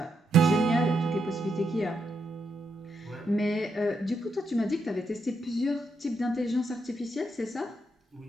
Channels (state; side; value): normal; both; correlation 0.81